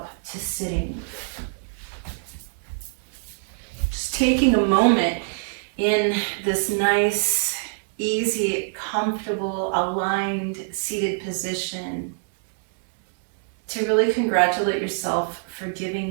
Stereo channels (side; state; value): left; silent; digital silence